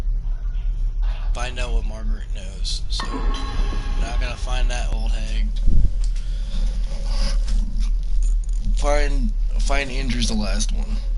Find out what Margaret knows. So now I gotta find that old hag. Find Andrew's the last one.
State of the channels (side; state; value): both; identical; correlation 1.00